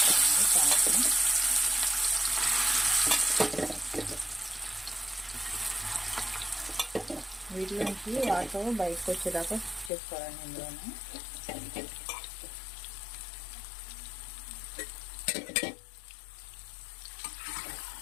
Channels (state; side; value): drops out; right; at 9.9 s